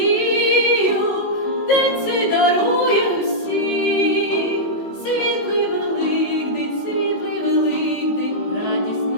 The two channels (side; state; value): right; late; 19 ms